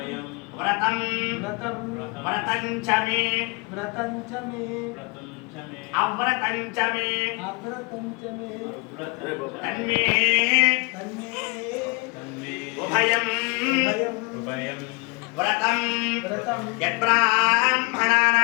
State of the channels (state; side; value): quieter; right; 28.7 dB